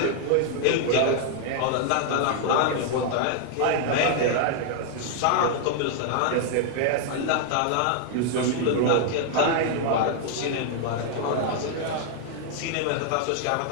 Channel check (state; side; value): different; both; correlation 0.00